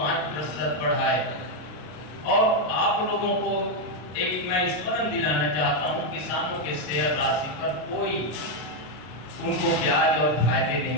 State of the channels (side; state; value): right; late; 33 ms